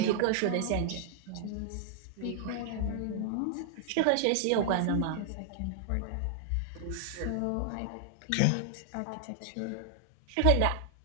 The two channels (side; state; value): both; different; correlation 0.00